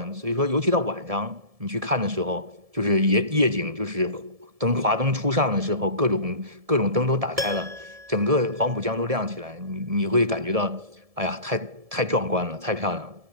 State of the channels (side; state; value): left; late; 1.7 ms